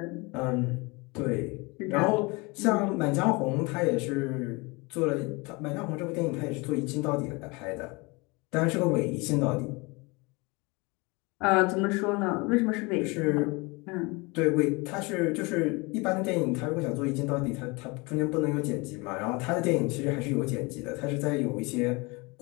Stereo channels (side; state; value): right; quieter; 26.6 dB